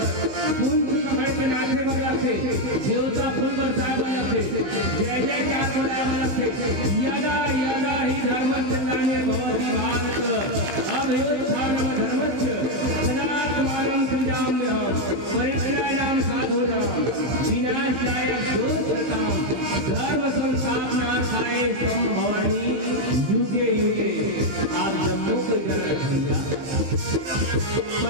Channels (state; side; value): late; left; 16 ms